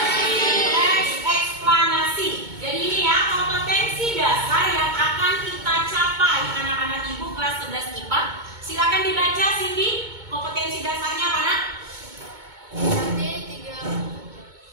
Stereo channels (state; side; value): late; left; 2.2 ms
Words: Eksplanasi. Jadi ini ya, kompetensi dasar yang akan kita capai anak-anak ibu kelas 11 IPA. Silakan dibaca Cindy, kompetensi dasarnya apa nak?